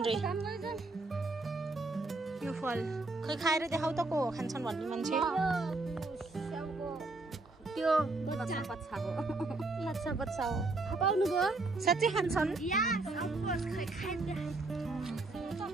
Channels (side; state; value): left; quieter; 3.2 dB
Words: रे यो फल खै खाएर देखाउ त को खान्छन् भन्ने मान्छे त्यो बच्चा बच्चा हो पाउनु भयो साँच्चै खान्छन्